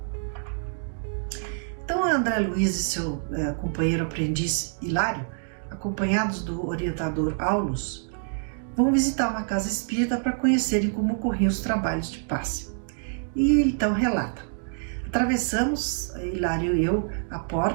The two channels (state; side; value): silent; left; digital silence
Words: Então, André Luiz e seu companheiro aprendiz Hilário, acompanhados do orientador Aulus, vão visitar uma casa espírita para conhecerem como ocorriam os trabalhos de passe. E então relata: atravessamos, Hilário e eu, a